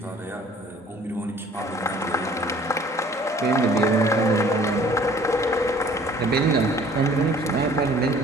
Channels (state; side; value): normal; both; correlation 0.53